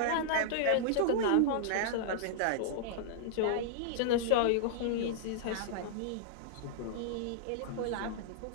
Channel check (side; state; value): both; different; correlation -0.02